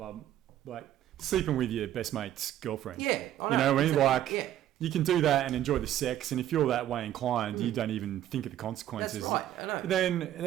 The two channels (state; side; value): quieter; left; 12.2 dB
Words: sleeping with your best mate's girlfriend. Yeah, I know. You know what I mean? You can do that and enjoy the sex, and if you're that way inclined, you don't even think of the consequences. That's right, I know. Then